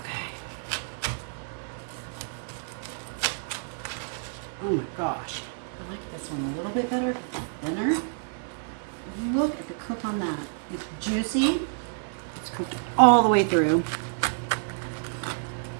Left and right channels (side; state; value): left; silent; digital silence